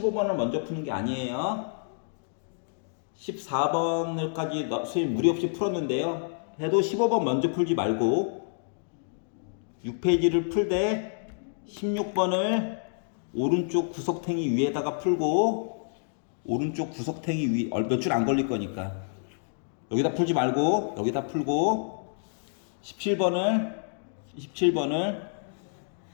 먼저 푸는 게 아니에요. 14번을까지 선생님 무리 없이 풀었는데요. 해도 15번 먼저 풀지 말고 6페이지를 풀 때 16번을 오른쪽 구석탱이 위에다가 풀고 오른쪽 구석탱이 위 몇 줄 안 걸릴 거니까 여기다 풀지 말고 여기다 풀고 17번을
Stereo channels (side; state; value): right; silent; digital silence